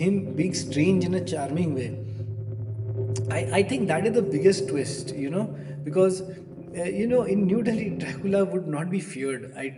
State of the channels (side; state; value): both; identical; correlation 1.00